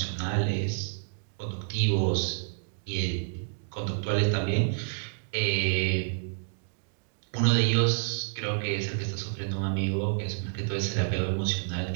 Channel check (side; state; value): left; silent; digital silence